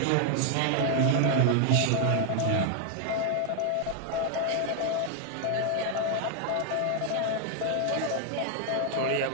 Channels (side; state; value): both; different; correlation 0.00